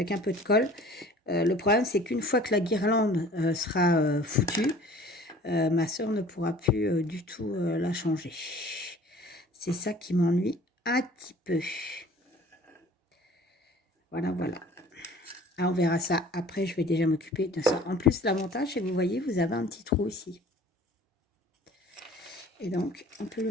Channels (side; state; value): both; normal; correlation 0.49